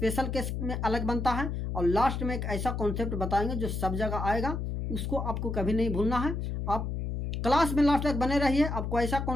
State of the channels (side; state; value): left; noise; hum, 3 dB below the sound